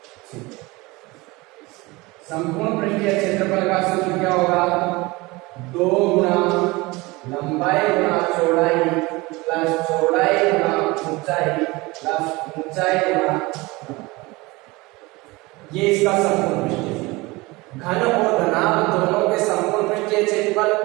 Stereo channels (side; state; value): left; quieter; 22.8 dB